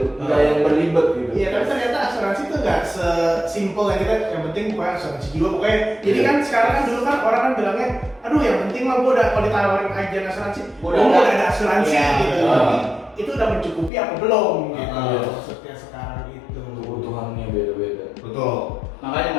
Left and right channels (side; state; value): right; drops out; at 13.9 s